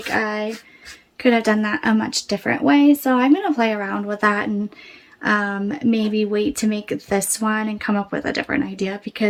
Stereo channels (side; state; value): both; identical; correlation 1.00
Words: I could have done that a much different way, so I'm going to play around with that and maybe wait to make this one and come up with a different idea,